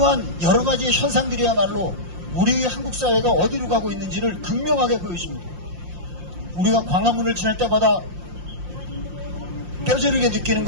여러 가지 현상들이야말로 우리의 한국 사회가 어디로 가고 있는지를 극명하게 보여줍니다. 우리가 광화문을 지날 때마다 뼈저리게 느끼는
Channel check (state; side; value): late; left; 5.7 ms